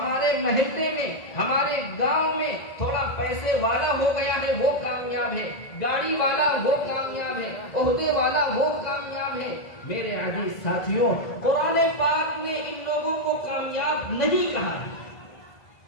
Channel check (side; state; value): right; late; 1.9 ms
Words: محلے میں، ہمارے گاؤں میں تھوڑا پیسے والا ہو گیا ہے وہ کامیاب ہے، گاڑی والا وہ کامیاب ہے، عہدے والا وہ کامیاب ہے. میرے عزیز ساتھیوں، قرآن پاک نے ان لوگوں کو کامیاب نہیں کہا ہے.